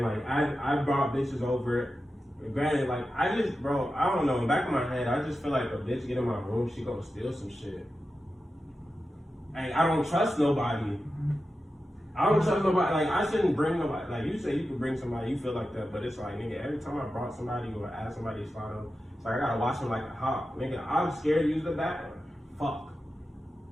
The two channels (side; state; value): both; normal; correlation 0.91